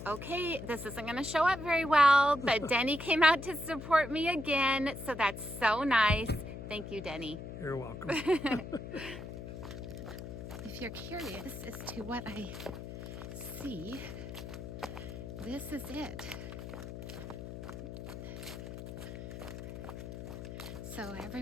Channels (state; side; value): noise; left; hum, 9 dB below the sound